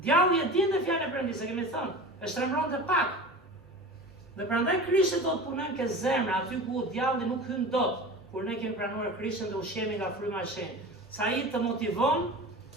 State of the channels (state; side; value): normal; both; correlation 0.34